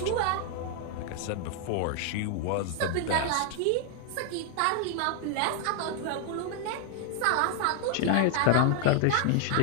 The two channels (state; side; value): different; both; correlation 0.00